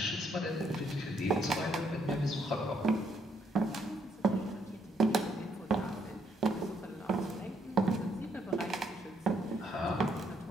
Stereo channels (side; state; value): both; normal; correlation 0.72